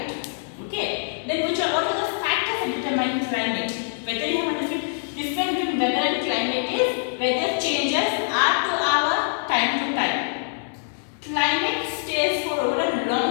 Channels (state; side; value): silent; right; digital silence